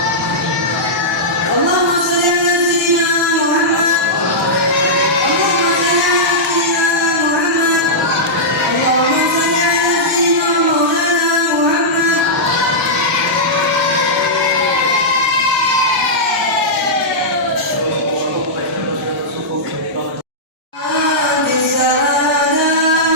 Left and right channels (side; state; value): both; normal; correlation -0.11